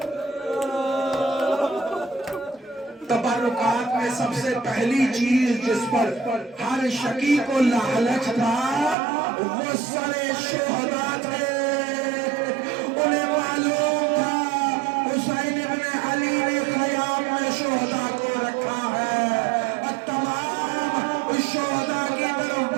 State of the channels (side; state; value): left; drops out; at 9.0 s